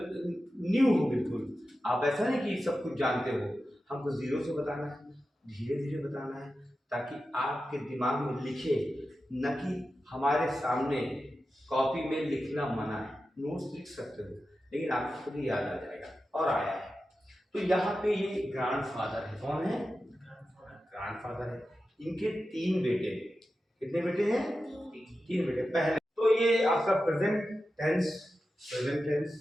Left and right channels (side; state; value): both; normal; correlation 0.92